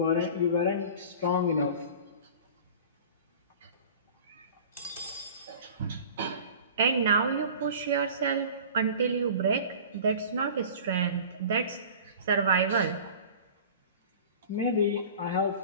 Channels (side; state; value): both; inverted; correlation -0.41